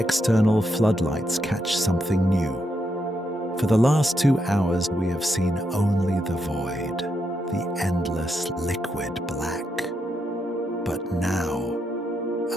floodlights catch something new. For the last 2 hours, we have seen only the void, the endless liquid black. But now,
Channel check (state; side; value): normal; both; correlation 0.81